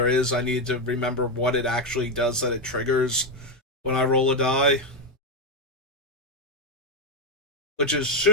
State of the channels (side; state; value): both; normal; correlation 0.05